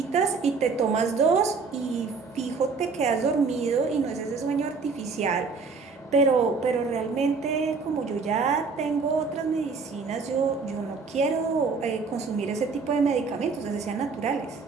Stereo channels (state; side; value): quieter; left; 4.7 dB